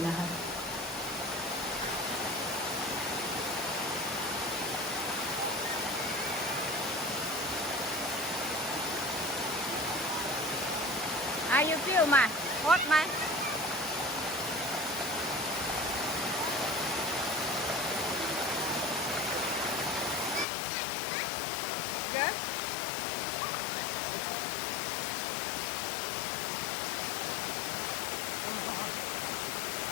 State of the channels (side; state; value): right; drops out; at 20.5 s